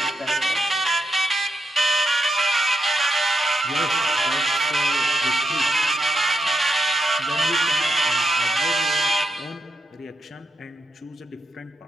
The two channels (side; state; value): both; normal; correlation 0.82